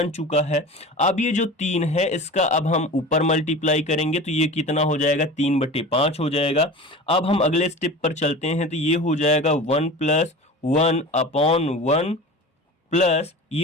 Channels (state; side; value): normal; both; correlation 0.34